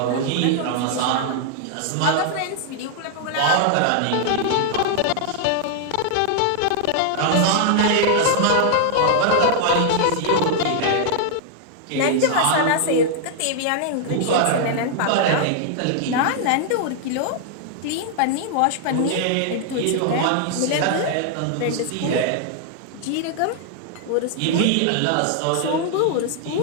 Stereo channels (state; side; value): different; both; correlation -0.01